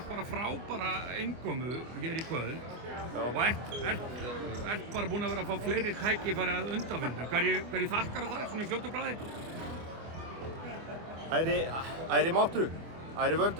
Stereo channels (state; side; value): late; left; 24 ms